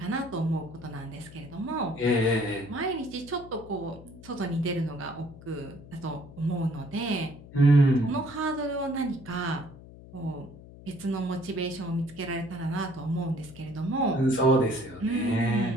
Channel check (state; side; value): noise; left; hum, 18 dB below the sound